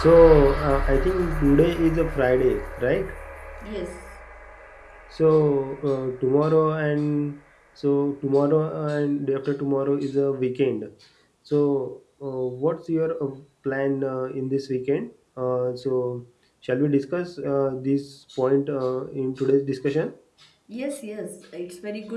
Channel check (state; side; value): identical; both; correlation 1.00